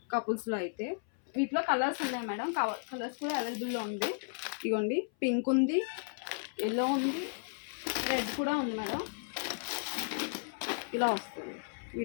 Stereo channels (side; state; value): right; silent; 55 dB below the other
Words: కపుల్స్లో అయితే. వీటిలో కలర్స్ ఉన్నాయి మేడం. కలర్స్ కూడా అవైలబుల్లో ఉంది. ఇదిగోండి. పింక్ ఉంది, ఎల్లో ఉంది, రెడ్ కూడా ఉంది మేడం. ఇలా వస్తుంది.